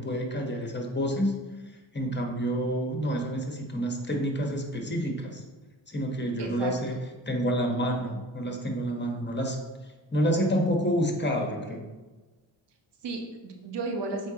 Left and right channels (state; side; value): normal; both; correlation 0.45